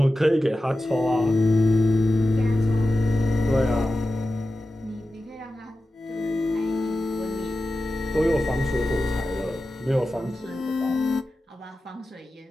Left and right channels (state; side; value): normal; both; correlation 0.93